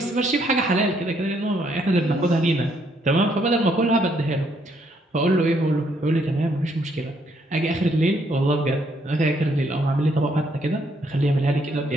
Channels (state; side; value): normal; both; correlation 0.71